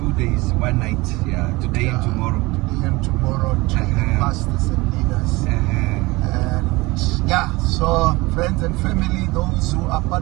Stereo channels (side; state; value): left; quieter; 22.3 dB